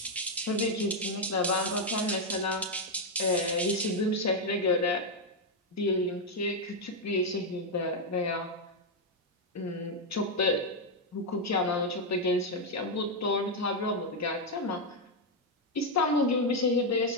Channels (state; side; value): normal; both; correlation 0.01